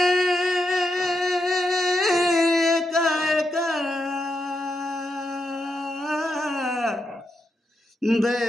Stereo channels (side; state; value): both; normal; correlation 0.84